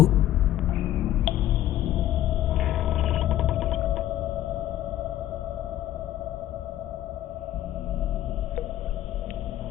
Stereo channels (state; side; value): quieter; right; 13.2 dB